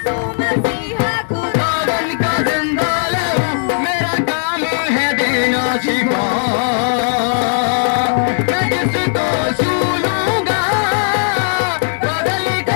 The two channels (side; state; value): right; silent; digital silence